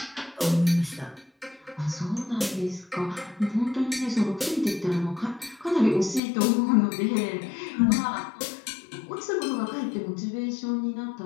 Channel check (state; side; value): drops out; right; at 6.2 s